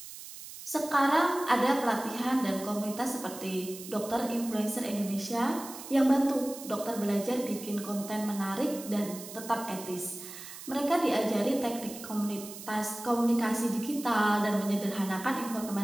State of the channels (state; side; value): noise; right; hiss, 13 dB below the sound